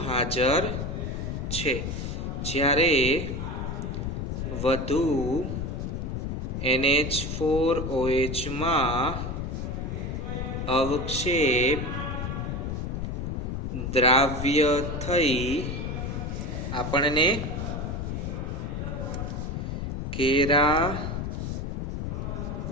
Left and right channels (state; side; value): noise; left; rumble, 3 dB below the sound